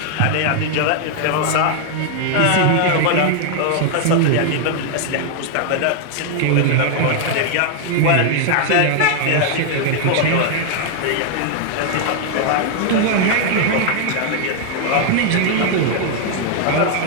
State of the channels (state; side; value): different; both; correlation 0.00